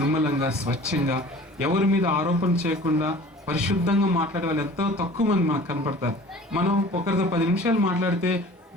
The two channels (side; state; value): both; normal; correlation 0.45